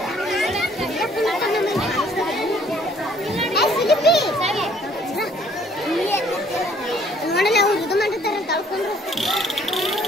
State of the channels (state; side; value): normal; both; correlation 0.60